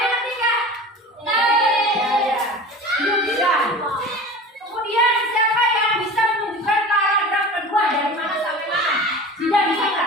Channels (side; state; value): both; normal; correlation 0.36